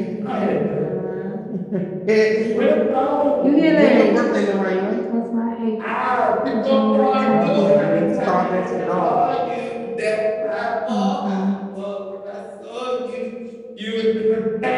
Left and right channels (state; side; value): identical; both; correlation 1.00